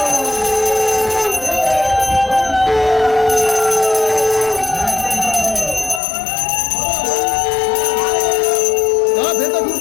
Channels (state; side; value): drops out; right; at 6.0 s